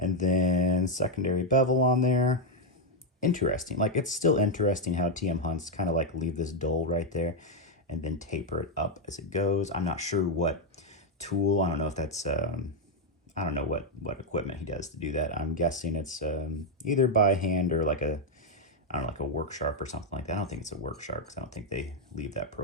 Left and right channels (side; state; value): both; normal; correlation 0.02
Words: then secondary bevel on there. Interesting. Like it's still interesting how TM Hunts kind of like leave this dull right there and then taper it up as it goes. I'm not sure what tool. I don't know if that's I don't know what equipment he does to do that. I'm guessing it's either by hand or like a, I don't know, like a work sharp or something like that. I don't think it's a work sharp because I don't think they leave that